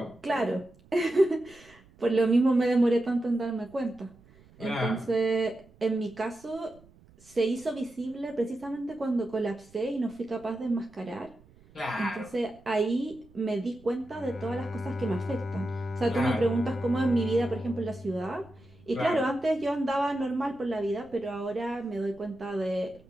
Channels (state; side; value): noise; right; rumble, 26 dB below the sound